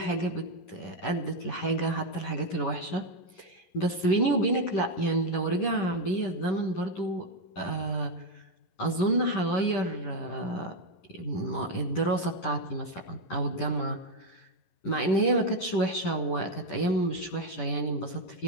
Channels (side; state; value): right; late; 10 ms